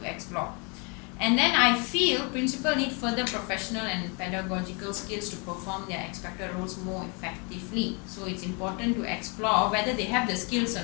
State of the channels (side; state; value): right; quieter; 33.1 dB